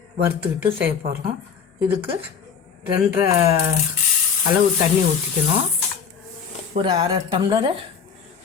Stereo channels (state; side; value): quieter; right; 6.7 dB